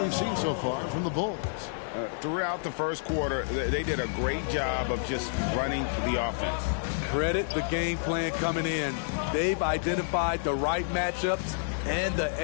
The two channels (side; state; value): right; silent; digital silence